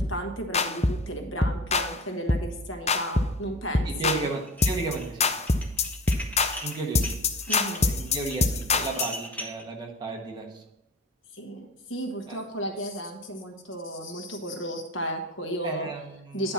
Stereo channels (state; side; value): normal; both; correlation 0.36